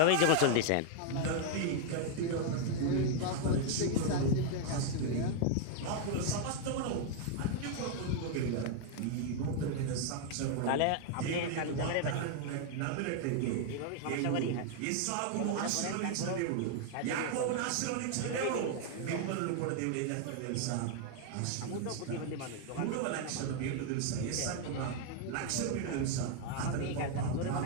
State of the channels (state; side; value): different; both; correlation 0.00